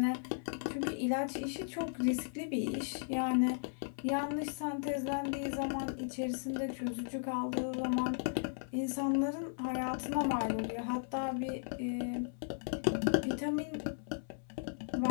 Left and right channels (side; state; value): right; silent; 54 dB below the other